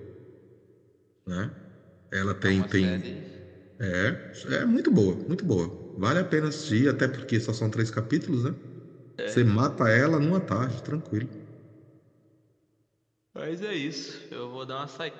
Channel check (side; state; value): both; identical; correlation 1.00